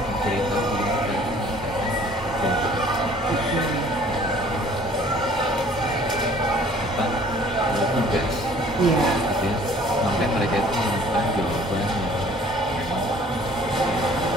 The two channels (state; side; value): normal; both; correlation 0.54